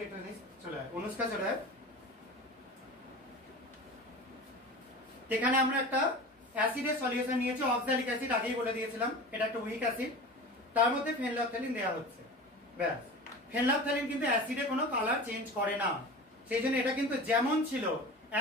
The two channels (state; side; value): normal; both; correlation 0.34